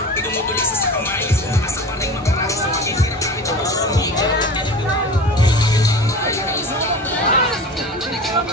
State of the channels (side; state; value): both; normal; correlation 0.35